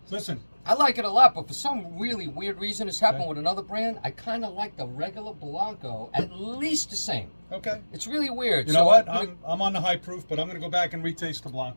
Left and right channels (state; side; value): inverted; both; correlation -1.00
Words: Listen. I like it a lot, but for some really weird reason, it's happened with another brand. I kind of like the regular Blanco at least the same. Okay. It's really weird. You know what? I'm on the high proof, but I'm going to go back and retaste the